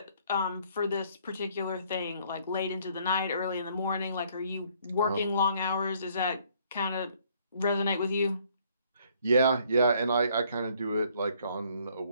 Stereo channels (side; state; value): both; inverted; correlation -0.63